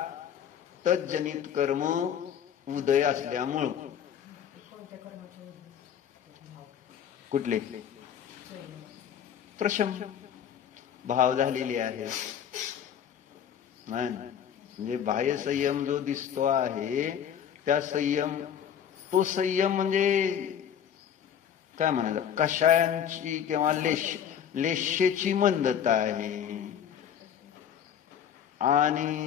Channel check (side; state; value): right; quieter; 8.9 dB